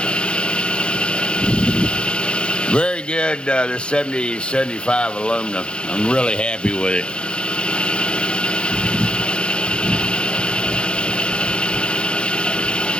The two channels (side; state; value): right; late; 0.054 ms